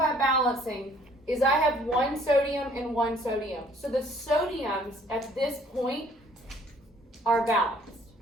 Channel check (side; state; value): both; normal; correlation 0.59